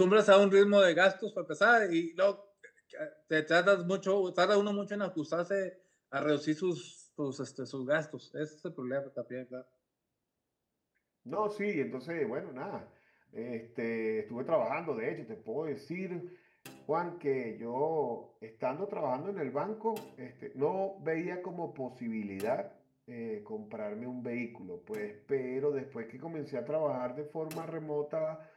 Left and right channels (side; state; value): both; identical; correlation 1.00